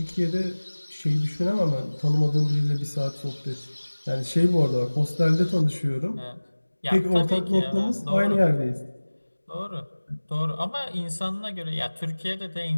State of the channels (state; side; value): inverted; both; correlation -1.00